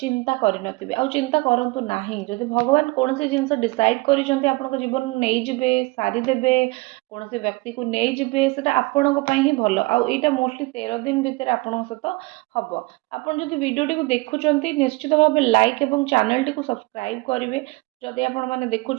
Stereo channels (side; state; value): left; quieter; 24.1 dB